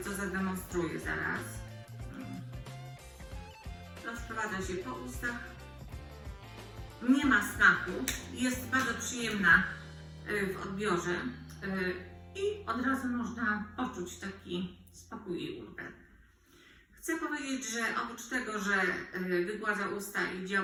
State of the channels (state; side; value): identical; both; correlation 1.00